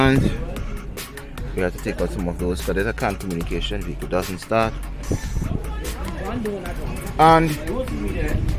we have to take out some of those because there's a CAN communication. Vehicle doesn't start.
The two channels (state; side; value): identical; both; correlation 1.00